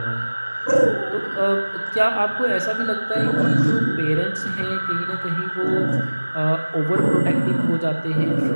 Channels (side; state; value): both; inverted; correlation -1.00